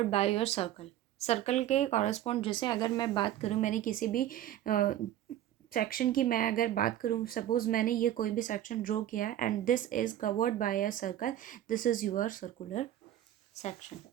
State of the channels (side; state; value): left; quieter; 12.3 dB